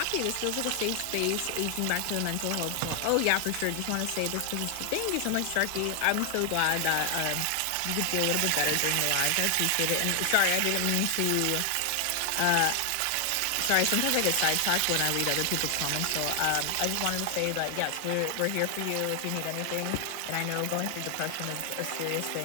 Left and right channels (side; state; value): both; different; correlation 0.00